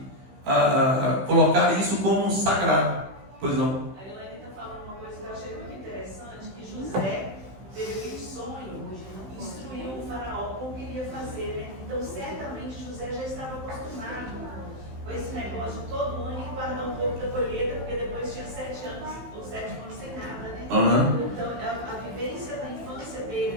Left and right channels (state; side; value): late; left; 15 ms